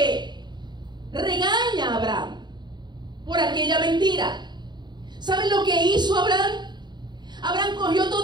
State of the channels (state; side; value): late; left; 0.21 ms